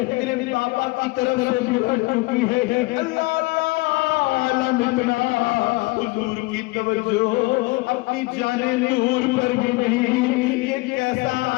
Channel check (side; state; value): right; quieter; 23.2 dB